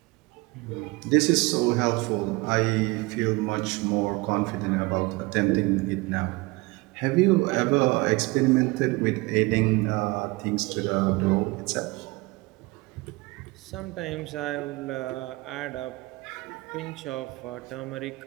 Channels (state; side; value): quieter; left; 23.6 dB